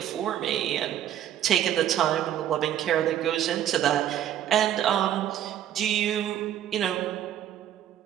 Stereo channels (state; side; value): quieter; left; 11.0 dB